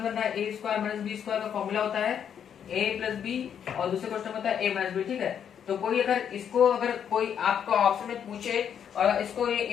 रहा है। a square minus b square का फॉर्मूला होता है a प्लस b और दूसरे क्वेश्चन में होता है a माइनस b। ठीक है, तो कोई अगर कोई आपका ऑप्शन में पूछे और इसको ये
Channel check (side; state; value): right; quieter; 8.4 dB